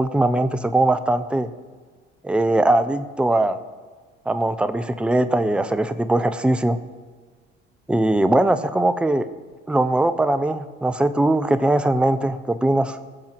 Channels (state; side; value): normal; both; correlation 0.90